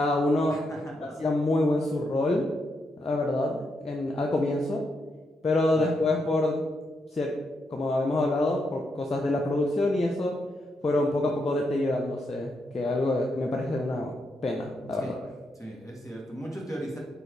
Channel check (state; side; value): normal; both; correlation 0.81